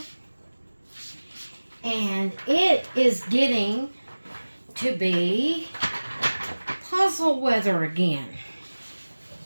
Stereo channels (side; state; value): both; inverted; correlation -1.00